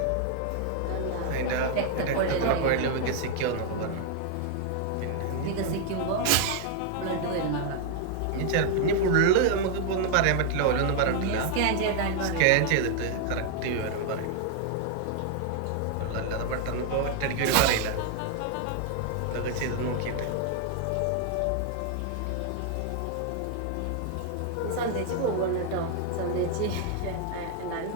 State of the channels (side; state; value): both; different; correlation 0.00